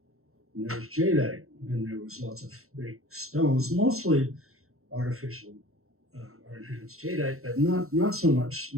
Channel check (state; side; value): late; left; 0.63 ms